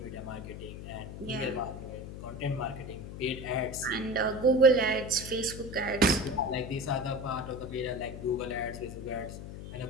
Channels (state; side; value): noise; left; hum, 10 dB below the sound